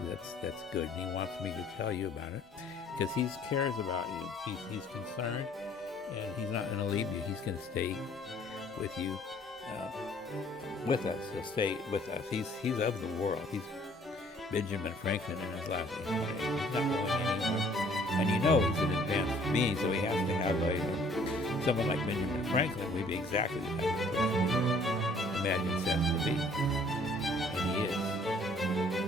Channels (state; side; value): normal; both; correlation 0.58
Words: that's good. And he wants me to tell you about it because he cares about you. He's concerned, and he's not going to leave you. He's going to stay with you, with us. He'll stay with us. He's of the world. He's Benjamin Franklin in his last name. He's not going anywhere. And you know he's an advanced being, so he has to have someone like Benjamin Franklin would be exactly the type of person you imagine Seth to be. And he is.